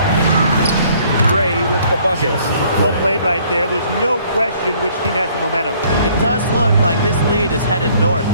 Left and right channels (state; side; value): inverted; both; correlation -0.61